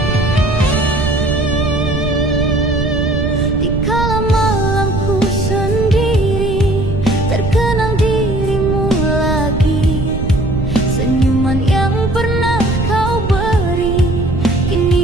Dikala malamku sendiri, terkenang dirimu lagi. Senyuman yang pernah kau beri,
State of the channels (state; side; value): noise; right; rumble, 3 dB below the sound